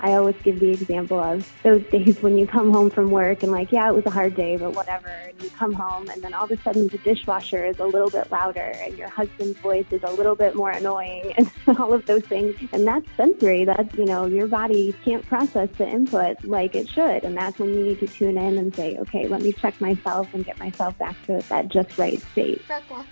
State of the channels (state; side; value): inverted; both; correlation -1.00